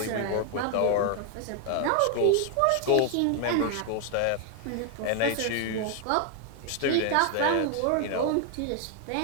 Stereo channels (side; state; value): both; different; correlation 0.01